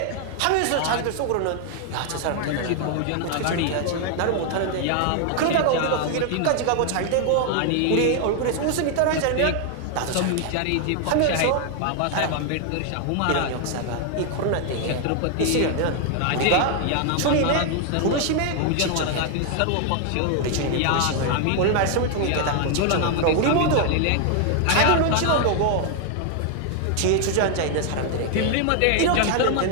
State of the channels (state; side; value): different; both; correlation 0.00